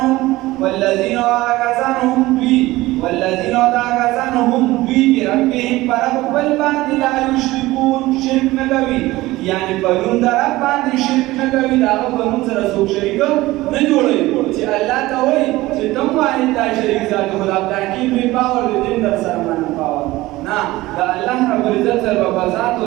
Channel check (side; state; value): left; quieter; 18.5 dB